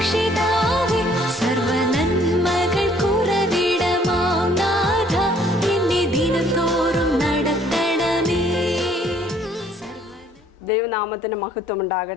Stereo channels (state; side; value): normal; both; correlation 0.61